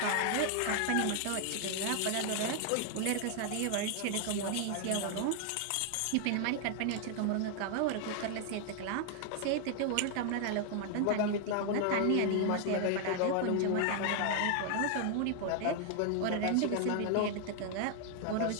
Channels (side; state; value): both; different; correlation 0.00